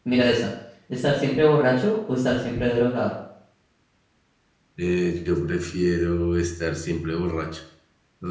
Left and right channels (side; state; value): both; identical; correlation 1.00